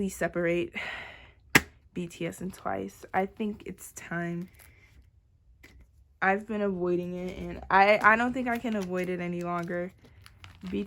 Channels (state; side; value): identical; both; correlation 1.00